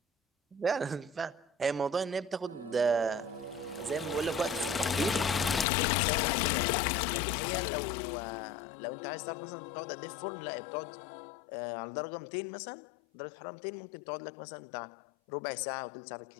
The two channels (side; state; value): right; drops out; at 5.7 s